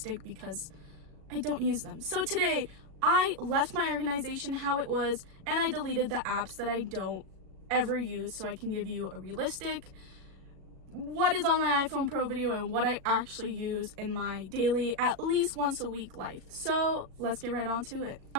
because I don't use them. So today, I left my organization how it was, and I deleted the apps that I don't ever use so I can give you a realistic what is on my iPhone Pro video and what I actually use in my daily, at least once a week life. So let's get right on to it.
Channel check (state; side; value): late; left; 37 ms